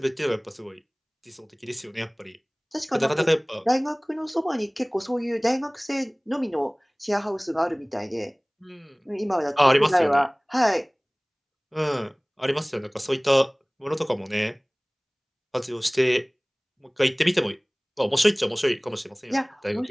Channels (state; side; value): identical; both; correlation 1.00